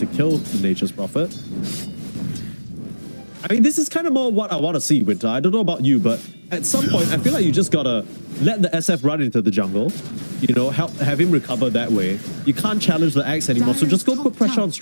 kill the Nature's Prophet. I mean, this is kind of more what I want to see, Winter. I don't know about you, but at some point, I feel like you just gotta let the SF run into the jungle. You know, have him recover that way. You can't challenge the Axe anymore, so just go Dire's put top pressure tower on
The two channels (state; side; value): inverted; both; correlation -1.00